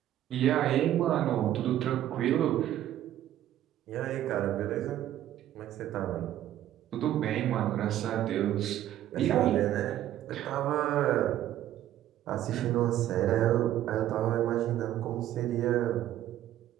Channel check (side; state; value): left; quieter; 12.6 dB